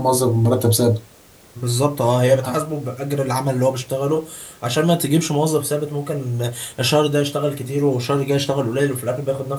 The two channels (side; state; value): both; identical; correlation 1.00